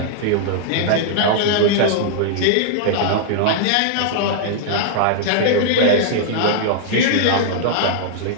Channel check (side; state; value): both; different; correlation -0.01